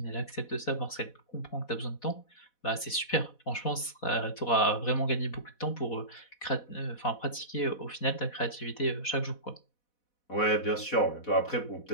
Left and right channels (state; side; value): late; right; 4.1 ms